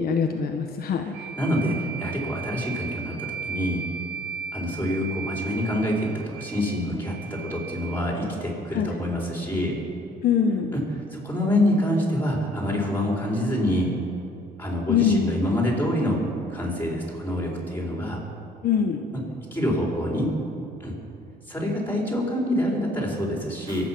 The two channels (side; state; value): both; normal; correlation 0.59